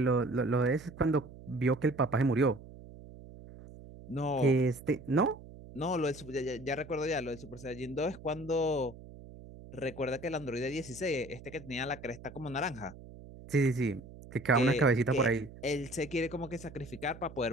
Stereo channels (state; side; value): noise; right; hum, 17 dB below the sound